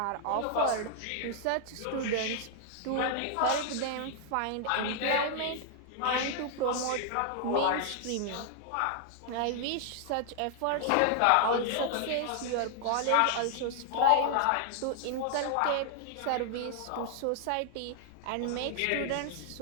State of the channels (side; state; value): both; different; correlation 0.00